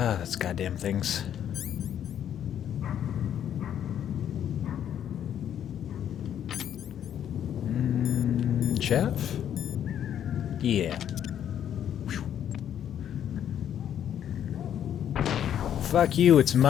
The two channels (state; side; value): quieter; right; 9.9 dB